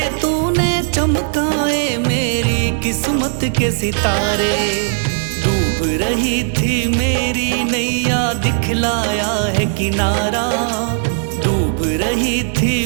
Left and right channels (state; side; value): silent; left; digital silence